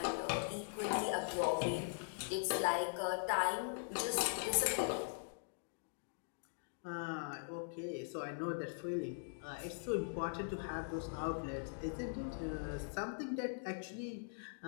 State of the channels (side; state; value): right; silent; digital silence